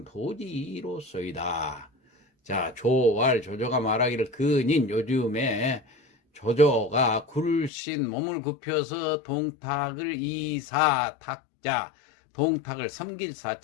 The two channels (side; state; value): right; drops out; at 7.7 s